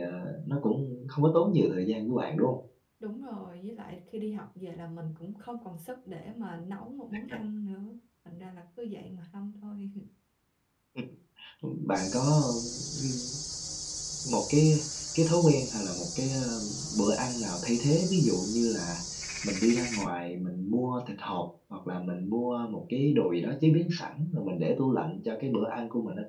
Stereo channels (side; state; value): both; identical; correlation 1.00